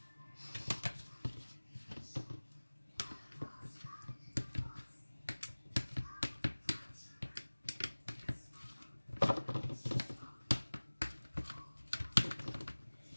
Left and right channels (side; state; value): both; inverted; correlation -1.00